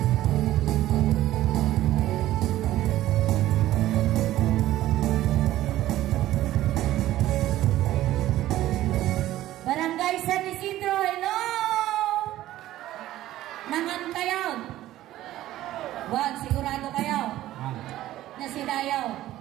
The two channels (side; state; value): left; quieter; 14.5 dB